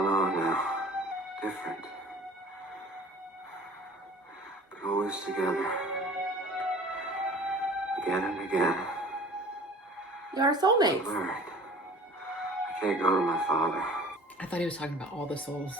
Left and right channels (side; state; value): both; normal; correlation 0.45